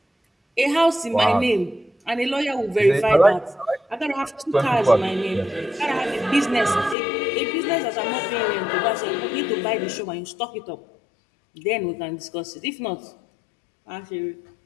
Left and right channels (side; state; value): right; drops out; at 7.0 s